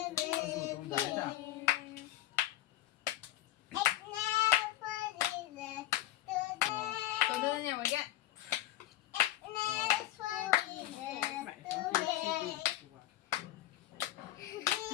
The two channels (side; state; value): right; quieter; 14.5 dB